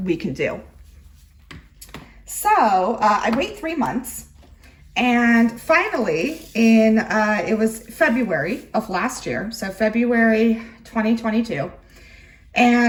can do. So I wait 3 months, and finally it was February of last year, so February 2022,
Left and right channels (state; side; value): identical; both; correlation 1.00